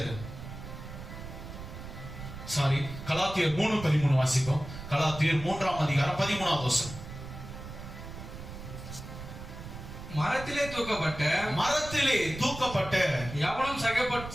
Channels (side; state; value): right; noise; rumble, 11 dB below the sound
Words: கலாத்தியர் 3:13 வாசிப்போம். கலாத்தியர் 3ஆம் அதிகாரம் 13வது வசனம். மரத்திலே தூக்கப்பட்ட